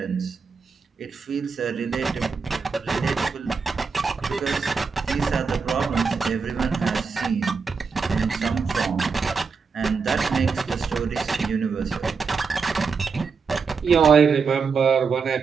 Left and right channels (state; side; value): quieter; left; 5.2 dB